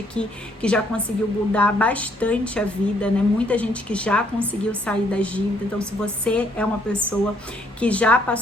aqui que já conseguiu mudar bastante a vida, né? Muita gente que já conseguiu sair das dívidas. Então, se você é uma pessoa que já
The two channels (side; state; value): both; normal; correlation 0.68